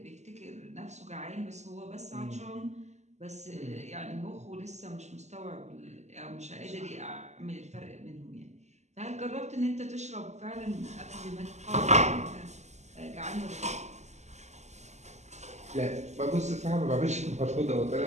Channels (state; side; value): late; left; 0.33 ms